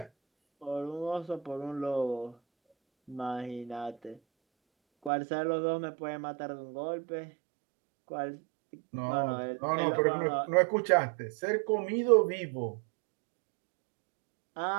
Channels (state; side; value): drops out; left; at 5.1 s